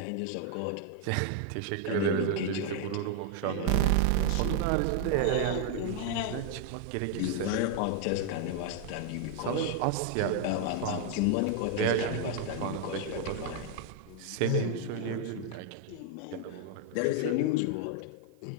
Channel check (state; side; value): different; both; correlation 0.00